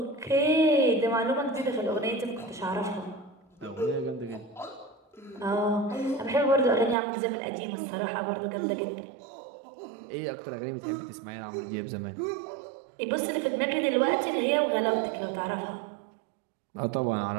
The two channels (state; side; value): drops out; left; at 7.0 s